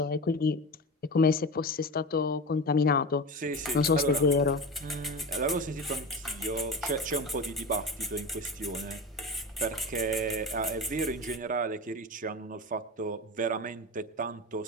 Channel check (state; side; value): normal; both; correlation 0.27